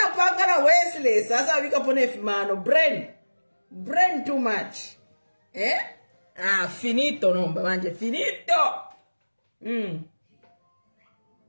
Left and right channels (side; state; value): both; inverted; correlation -1.00